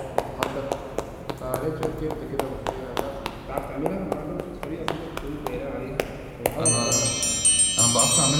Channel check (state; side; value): identical; both; correlation 1.00